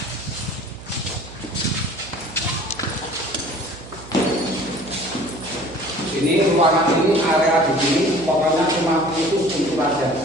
Ini ruangan ini area di sini pokoknya cuma khusus untuk raja.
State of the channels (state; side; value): noise; right; hum, 17 dB below the sound